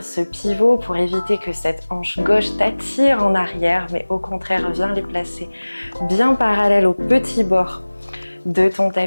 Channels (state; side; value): inverted; both; correlation -1.00